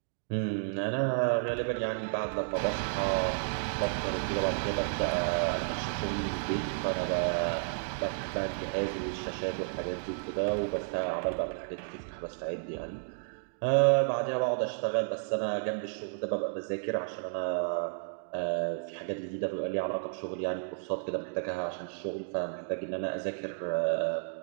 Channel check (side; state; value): left; silent; digital silence